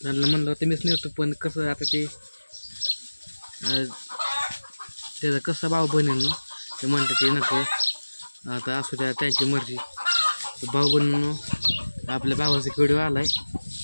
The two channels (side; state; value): both; inverted; correlation -1.00